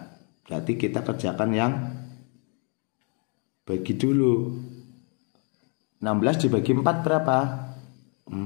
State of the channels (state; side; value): quieter; right; 38.0 dB